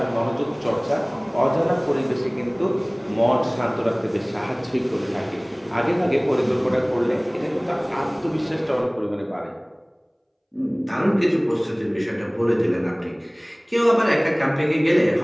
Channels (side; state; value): both; identical; correlation 1.00